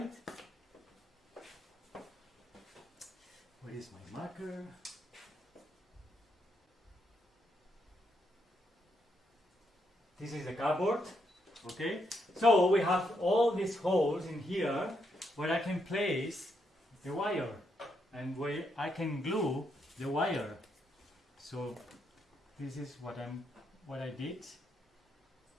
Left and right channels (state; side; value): normal; both; correlation 0.78